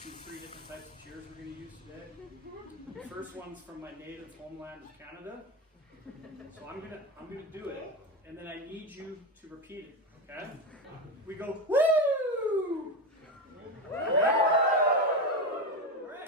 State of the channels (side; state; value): both; normal; correlation 0.16